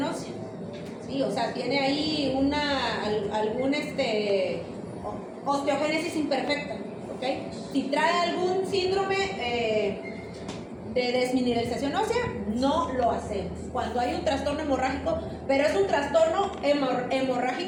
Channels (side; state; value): both; identical; correlation 1.00